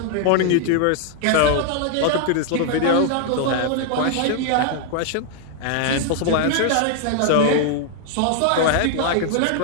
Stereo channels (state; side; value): different; both; correlation 0.00